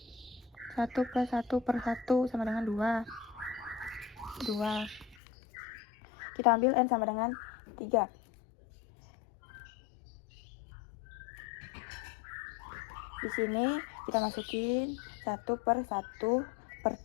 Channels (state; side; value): drops out; right; at 5.2 s